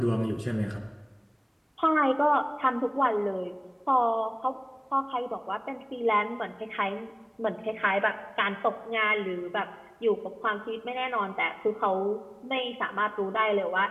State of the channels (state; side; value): identical; both; correlation 1.00